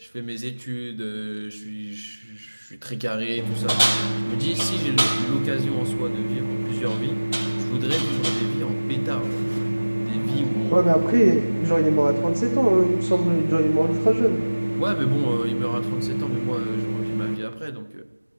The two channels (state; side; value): inverted; both; correlation -1.00